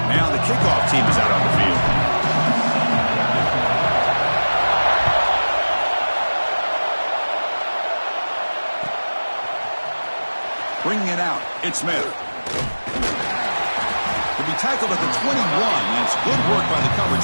Kickoff team is out on the field. Bringing it out, it's Smith. He'll be tackled at the 21. That's good work by the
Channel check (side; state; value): both; inverted; correlation -1.00